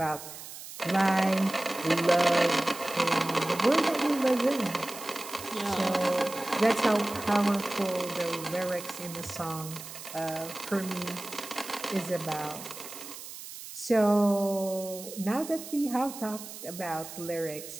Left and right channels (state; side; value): noise; right; hiss, 12 dB below the sound